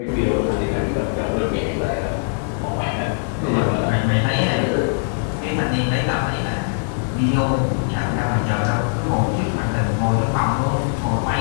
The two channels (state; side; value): silent; right; digital silence